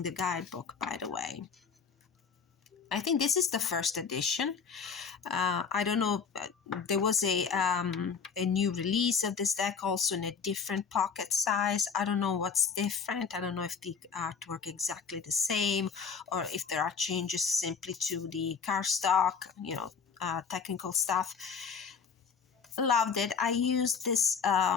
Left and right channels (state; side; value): quieter; right; 6.0 dB